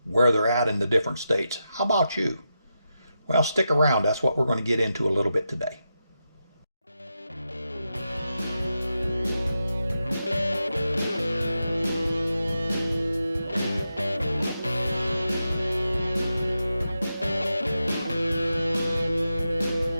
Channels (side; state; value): both; inverted; correlation -0.88